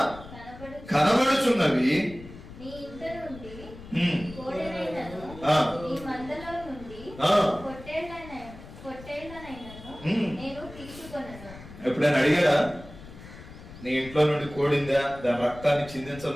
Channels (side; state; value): left; noise; rumble, 16 dB below the sound